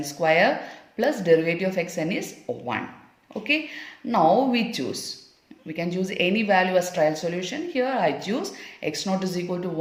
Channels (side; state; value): both; identical; correlation 1.00